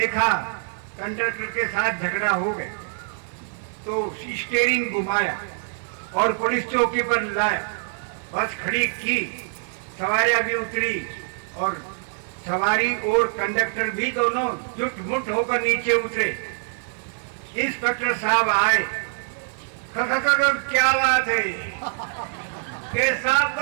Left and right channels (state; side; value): silent; left; 61 dB below the other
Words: कंडक्टर के साथ झगड़ा हो गया तो स्टीयरिंग घुमाया और पुलिस चौकी पर लाया, बस खड़ी की, सवारियां भी उतरी और सवारी और कंडक्टर भी दोनों जुट मुट होकर नीचे उतरे। इंस्पेक्टर साहब आए, क्या बात है? के साहब